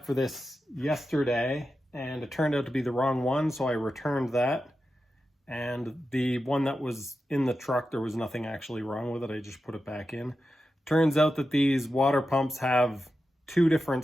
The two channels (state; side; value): normal; both; correlation 0.90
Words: for this yesterday, and it turned out to be the wrong one, so I returned that. And the one that was in the truck, there was nothing actually wrong with it. I just put it back in. Turns out that these water pumps have 2